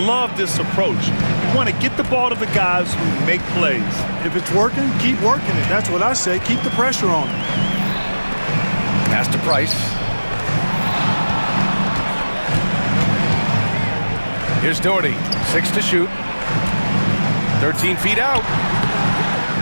this approach. You want to get the ball to the guys who make plays. If it's working, keep working it. That's what I say. Keep the pressure on him. Pass to Price. Here's Doherty. 6 to shoot. 13 feet out.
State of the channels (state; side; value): inverted; both; correlation -1.00